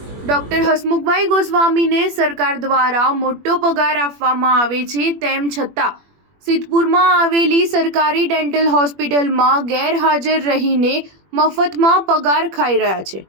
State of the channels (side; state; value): left; late; 21 ms